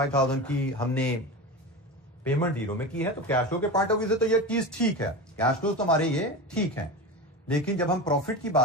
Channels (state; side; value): normal; both; correlation 0.25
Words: की हमने पेमेंट 0 में की है, तो कैश फ्लो के पॉइंट ऑफ व्यू से तो ये चीज ठीक है, कैश फ्लो तो हमारे ये ठीक है। लेकिन जब हम प्रॉफिट की